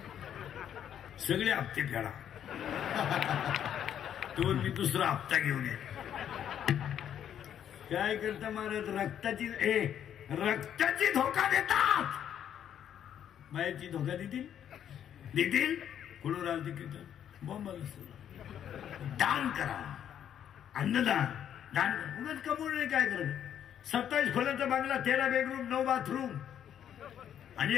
सगळे हप्ते फेडा, तो मी दुसरा हप्ता घेऊन ये. काय करता महाराज? रक्ताची धोका देतात. बायाची धोका देतील कुठून राहते कीर्तन बॉम्बाला. दान करा, अन्नदान, दान उगाच कमवून नाही. काय करत? 27 खोल्याचा बांगला, 13 बेडरूम, 9 बाथरूम, आणि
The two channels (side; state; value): right; quieter; 9.7 dB